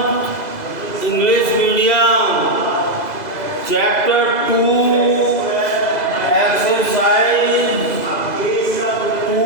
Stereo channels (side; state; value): right; late; 2.0 ms